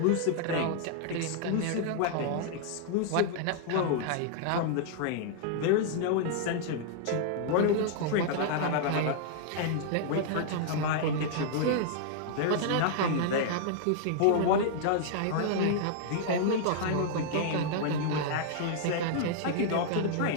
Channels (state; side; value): different; both; correlation -0.01